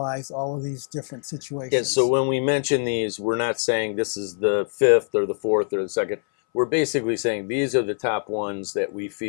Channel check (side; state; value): right; silent; 60 dB below the other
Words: all of these different situations. Yeah, so when we mention these, we're not saying this is the 5th or the 4th or the 2nd. We're basically saying these are the top ones that we